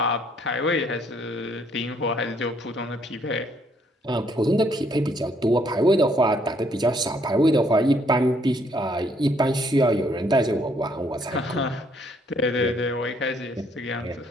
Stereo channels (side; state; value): both; normal; correlation 0.68